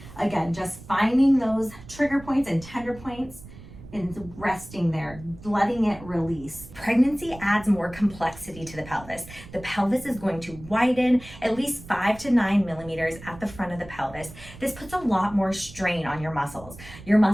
Again, just finding those trigger points and tender points and resting there, letting it release. Pregnancy adds more complexity to the pelvis. The pelvis is going to widen at least 5 to 9 millimeters at the front of the pelvis. This puts a lot more strain on your muscles. Your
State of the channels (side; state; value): right; noise; rumble, 17 dB below the sound